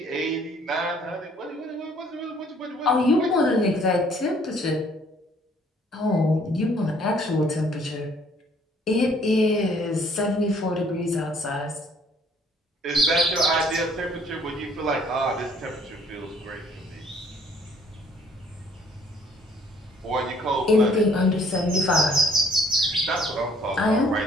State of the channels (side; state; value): both; normal; correlation 0.61